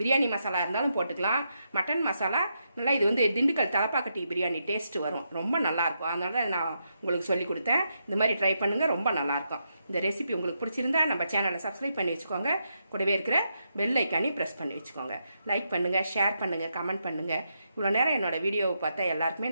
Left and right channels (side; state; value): both; inverted; correlation -0.82